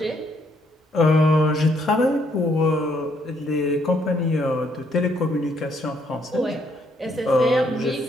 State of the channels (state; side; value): normal; both; correlation 0.70